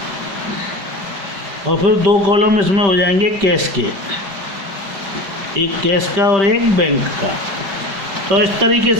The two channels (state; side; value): late; left; 5.2 ms